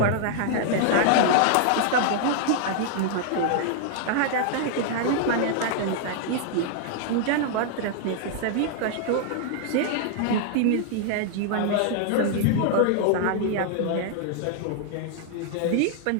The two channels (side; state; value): both; different; correlation 0.00